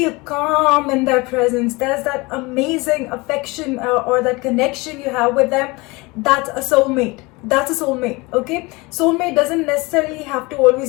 calm in their presence, there's that amazing affection or that connection you have with them, that's a soulmate. That's a soulmate. Okay, soulmate doesn't necessarily have to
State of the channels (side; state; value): right; quieter; 24.5 dB